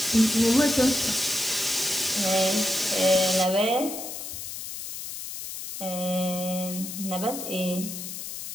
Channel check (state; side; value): noise; left; hiss, 8 dB below the sound